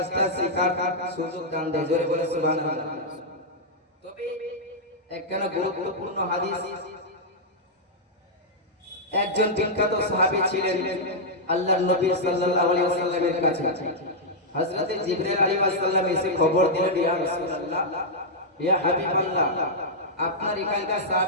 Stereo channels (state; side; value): normal; both; correlation -0.07